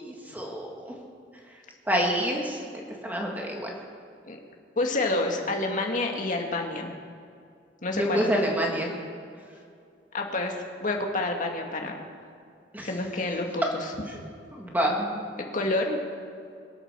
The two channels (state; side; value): normal; both; correlation 0.36